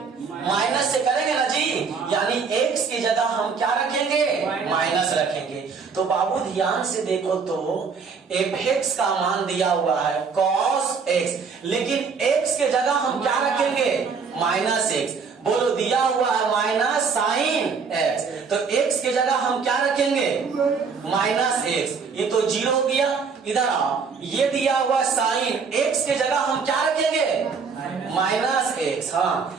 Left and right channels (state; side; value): quieter; left; 5.4 dB